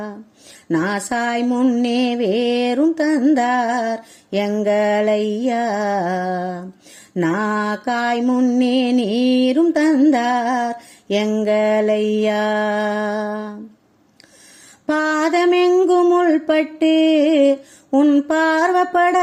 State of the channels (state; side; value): identical; both; correlation 1.00